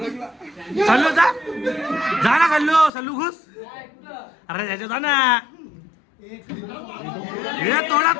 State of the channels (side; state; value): right; drops out; at 2.9 s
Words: सल्लू जा ना सल्लू. सल्लू घुस. अरे त्याच्या जा ना. हे तोडा